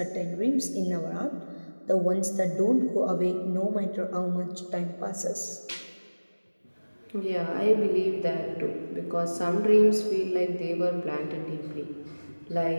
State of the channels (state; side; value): inverted; both; correlation -1.00